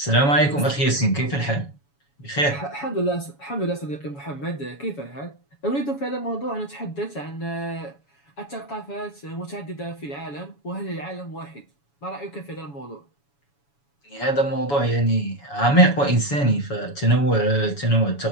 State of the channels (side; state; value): right; late; 7.1 ms